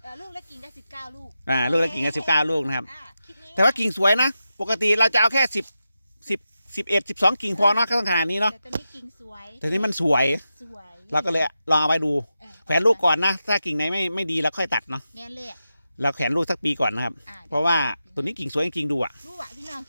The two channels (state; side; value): inverted; both; correlation -0.90